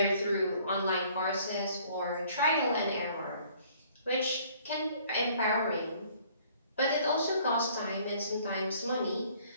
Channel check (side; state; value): both; inverted; correlation -0.58